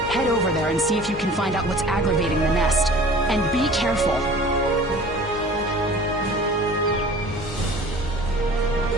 Head over there and see if you can find out what's aggravating the nest. And be careful.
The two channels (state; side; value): normal; both; correlation 0.45